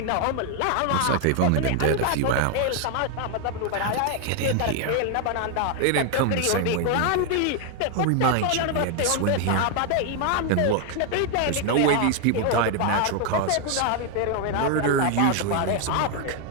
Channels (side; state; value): both; different; correlation 0.00